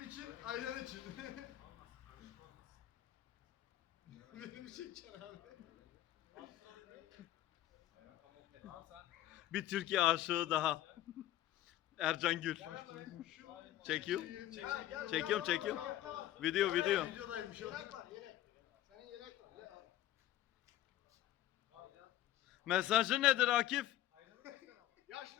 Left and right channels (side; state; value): right; quieter; 13.6 dB